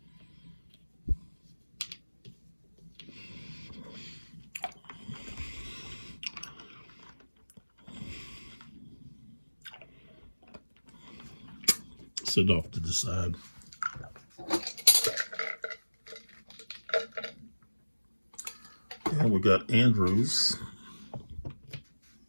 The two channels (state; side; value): inverted; both; correlation -1.00